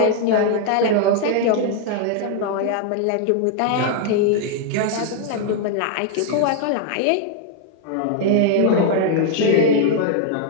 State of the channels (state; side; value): different; both; correlation 0.00